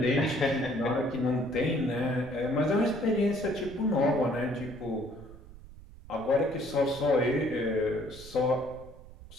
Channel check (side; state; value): right; noise; rumble, 18 dB below the sound